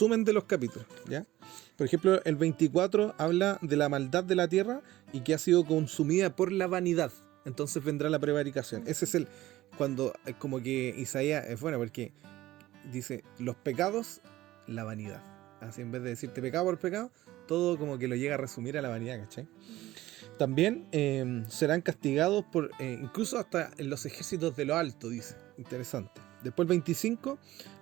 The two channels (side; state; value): left; quieter; 16.0 dB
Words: de los capítulos, ¿ya? Por ejemplo, el 24 habla de la maldad de la tierra y que ha sido consumida por la vanidad. Entonces vendrá la prevaricación. Ese es cuando como que Isaías es bueno porque dice los pecados, la vanidad. Así en vez de decirte pecado por pecado, todo como que lo llega a resumir a la vanidad, ¿cachai? También serán castigados por incluso hasta en los ejércitos de lo alto, dice. Interesante. Después el 25